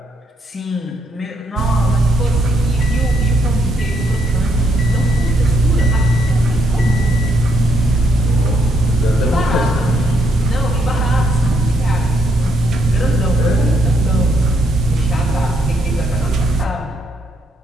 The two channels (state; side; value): normal; both; correlation 0.75